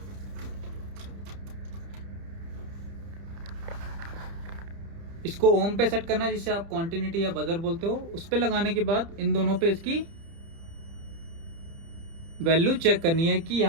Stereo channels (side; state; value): left; late; 30 ms